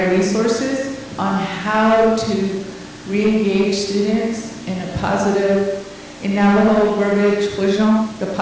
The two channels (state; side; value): identical; both; correlation 1.00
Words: resources on how to re-engage students in a positive, in Navajo verbiage, the